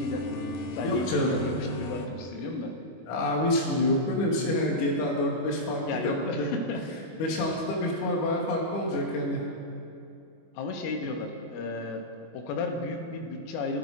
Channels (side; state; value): right; late; 25 ms